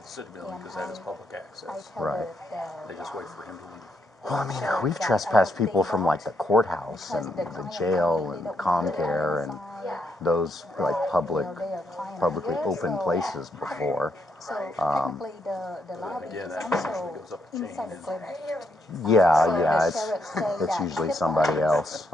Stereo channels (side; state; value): both; normal; correlation 0.77